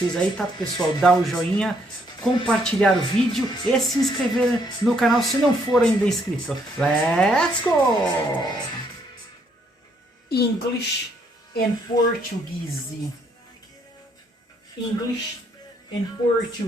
aí, tá pessoal? Dá o joinha, compartilhar o vídeo e se inscrever no canal se não for ainda inscrito. Let's go! English and Portuguese. English and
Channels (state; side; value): normal; both; correlation 0.70